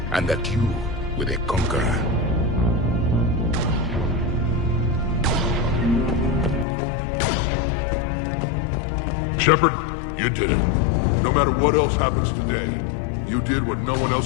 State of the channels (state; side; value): drops out; right; at 6.7 s